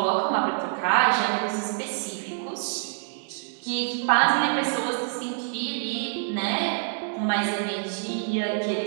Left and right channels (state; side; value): silent; left; 61 dB below the other